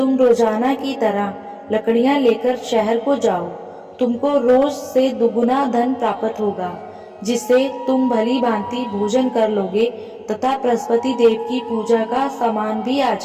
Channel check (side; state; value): both; identical; correlation 1.00